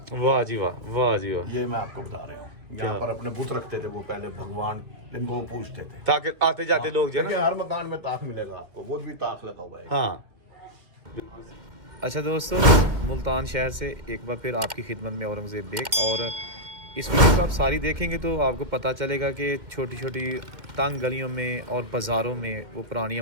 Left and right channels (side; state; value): left; late; 2.1 ms